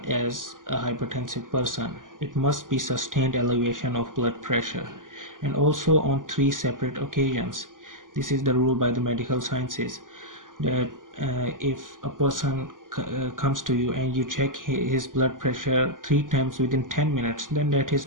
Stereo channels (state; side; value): late; left; 0.89 ms